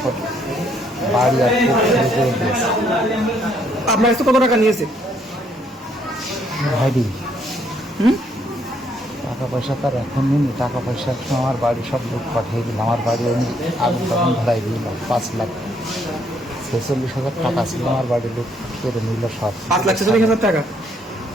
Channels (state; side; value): normal; both; correlation 0.70